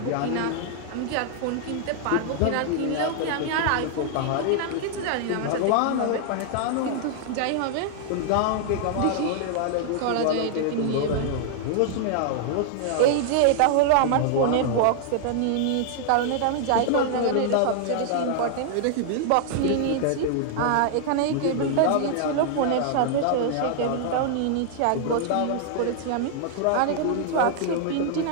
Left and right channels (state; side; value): different; both; correlation 0.00